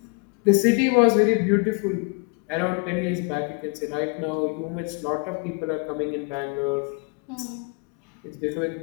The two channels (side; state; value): right; quieter; 34.6 dB